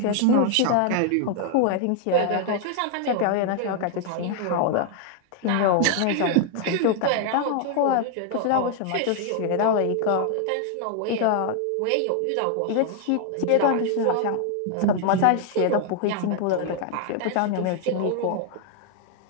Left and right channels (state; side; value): different; both; correlation 0.00